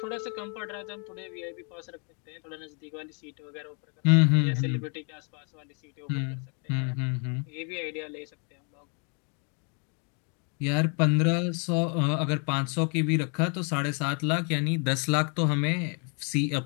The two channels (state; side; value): quieter; right; 37.6 dB